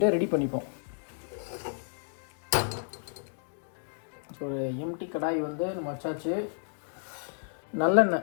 ரெடி பண்ணிப்போம். ஸோ ஒரு எம்டி கடாய் வந்து நம்ம வச்சாச்சு. நல்லெண்ணெய்.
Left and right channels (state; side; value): silent; right; digital silence